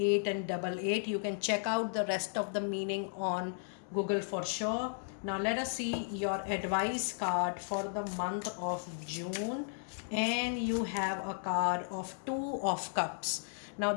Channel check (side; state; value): right; silent; digital silence